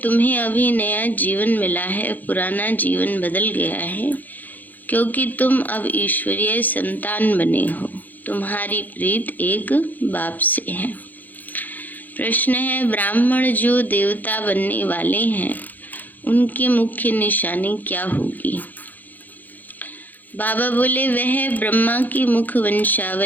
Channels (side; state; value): right; late; 0.084 ms